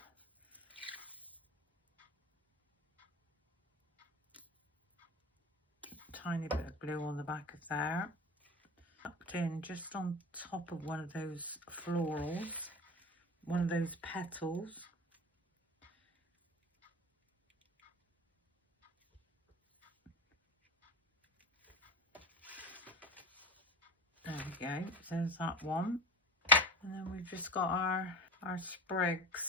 Tiny bit of glue on the back of there. Tucked in just on top of one of those florals, one of those petals. There we go, there's that one. And then we've just got our sprigs.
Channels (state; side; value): normal; both; correlation 0.29